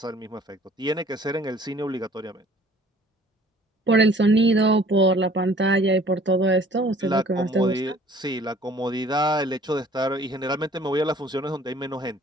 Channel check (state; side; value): normal; both; correlation 0.53